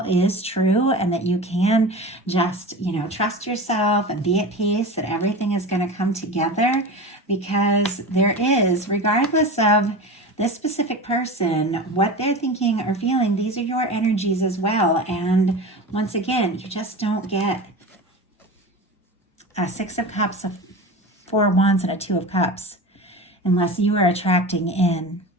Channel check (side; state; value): both; normal; correlation 0.30